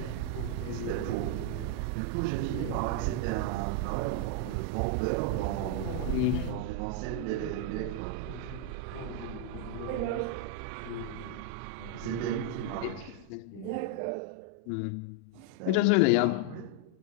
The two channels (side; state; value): both; different; correlation 0.00